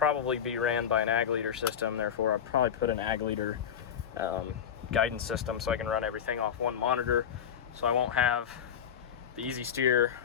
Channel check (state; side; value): quieter; right; 8.4 dB